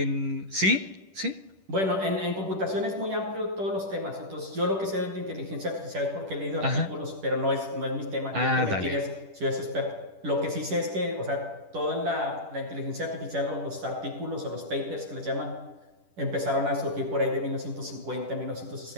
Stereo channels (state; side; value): late; left; 10 ms